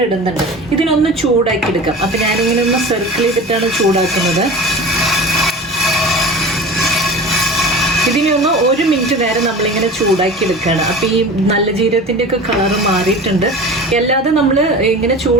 ഇടുന്നുണ്ട്. ഇതിനൊന്ന് ചൂടാക്കി എടുക്കാം. അപ്പം ഞാനിങ്ങനെ ഒന്ന് സർക്കിൾ ചെയ്തിട്ടാണ് ചൂടാക്കുന്നത്. ഇതിനെ ഒന്ന് 1 മിനിറ്റ് നേരം നമ്മളിങ്ങനെ ചൂടാക്കി എടുക്കുകയാണ്. അപ്പം ഈ നല്ല ജീരകത്തിൻ്റെ ഒക്കെ കളറ് മാറിയിട്ടുണ്ട്. അല്ലാതെ നമ്മൾ ഇങ്ങനെ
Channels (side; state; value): both; normal; correlation 0.36